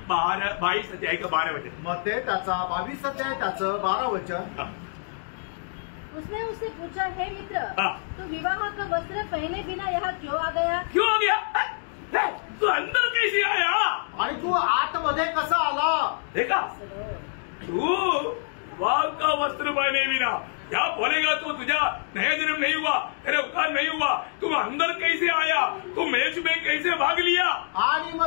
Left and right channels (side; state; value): right; silent; digital silence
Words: 22 अध्याय का 12 वचन। मग ते त्याचा 22 अध्याय त्याचं 12 वचन। उसने उससे पूछा, हे मित्र, हाँ। तू विवाह का वस्त्र पहने बिना यहाँ क्यों आ गया? क्यों आ गया? तू अंदर कैसे आया? आणि तू आतमध्ये कसा आला? देखा, तू विवाह का वस्त्र पहने बिना क्या बोलेगा, तो तुझा नया जन्म नहीं हुआ, तेरे उपकार नहीं हुआ, तुम अंदर कैसे आया, तू मेज में कैसे भाग लिया? आणि